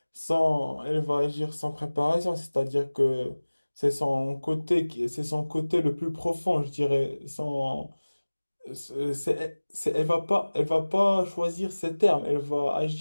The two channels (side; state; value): both; inverted; correlation -1.00